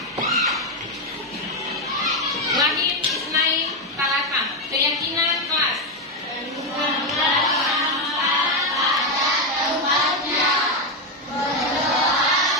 Wahid Isnai Talata. Keyakinan kelas.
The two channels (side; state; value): both; normal; correlation 0.07